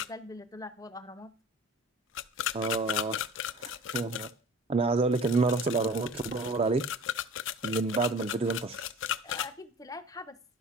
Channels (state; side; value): normal; both; correlation 0.42